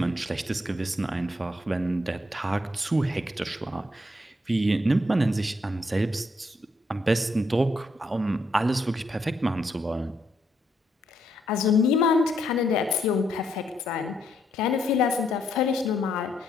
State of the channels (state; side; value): normal; both; correlation 0.75